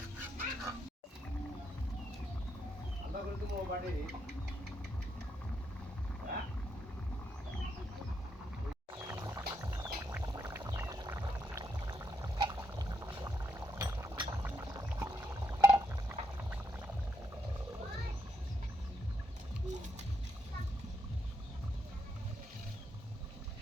আলাদা করে তুমি বাড়ি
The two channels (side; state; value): both; normal; correlation 0.77